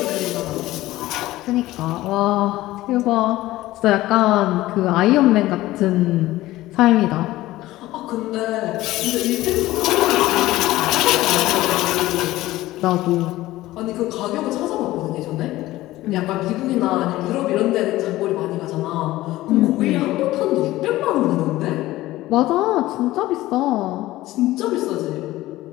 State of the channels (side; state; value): right; quieter; 16.8 dB